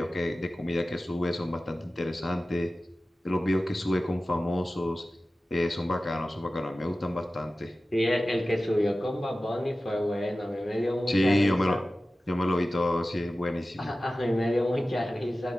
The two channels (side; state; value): both; normal; correlation 0.96